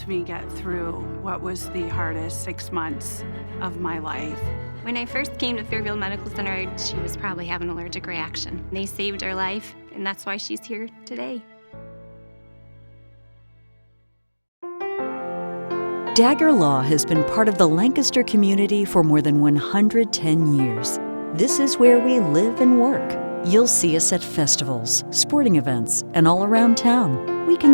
me get through what was the hardest 6 months of my life. When I first came to Fairfield Medical Center, she was probably having an allergic reaction. They saved her life, and that's why she's here today. Dagger Law has been part of the Lancaster community for more than 110 years. This is where we live and work. You'll see us at festivals, sporting events, and all around town. We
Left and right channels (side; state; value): both; inverted; correlation -1.00